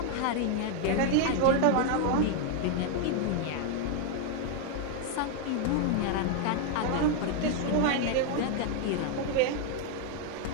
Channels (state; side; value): different; both; correlation 0.00